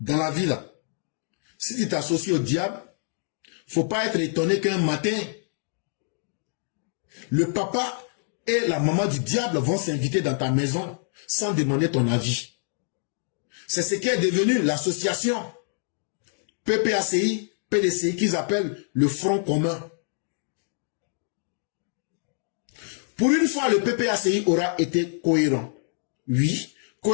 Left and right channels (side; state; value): right; silent; digital silence